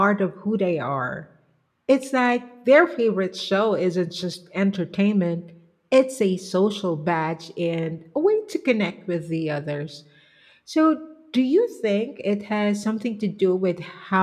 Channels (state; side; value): identical; both; correlation 1.00